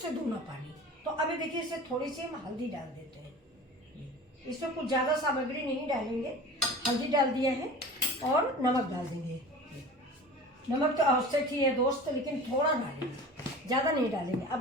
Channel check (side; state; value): both; normal; correlation 0.38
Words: दूना पानी। तो अभी देखिए इसे थोड़ी सी हम हल्दी डाल देते हैं। इसमें कुछ ज़्यादा सामग्री नहीं डालेंगे, हल्दी डाल दिया है और नमक डाल देंगे। नमक तो आवश्यक ही है दोस्त, लेकिन थोड़ा डालेंगे, ज़्यादा नहीं डालेंगे।